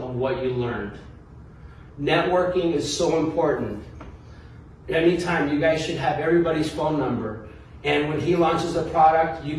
of what you learned. Networking is so important. Anytime, you guys should have everybody's phone number. And when he launches a product, you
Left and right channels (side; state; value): both; identical; correlation 1.00